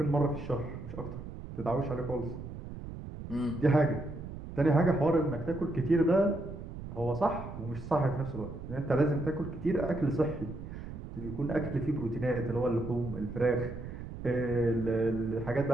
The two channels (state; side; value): noise; right; rumble, 10 dB below the sound